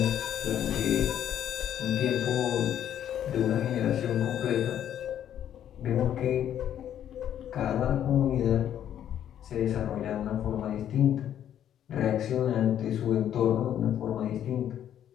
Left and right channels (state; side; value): quieter; right; 10.4 dB